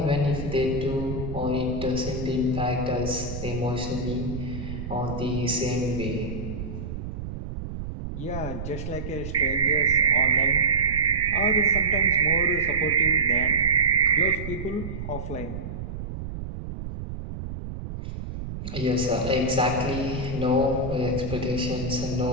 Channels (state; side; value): noise; right; rumble, 7 dB below the sound